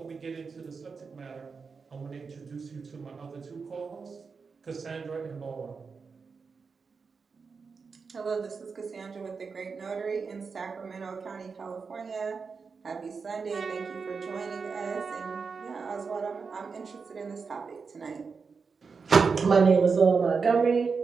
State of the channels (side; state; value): left; quieter; 5.1 dB